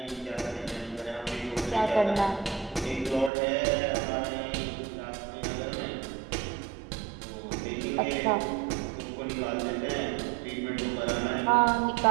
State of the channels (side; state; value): left; drops out; at 3.3 s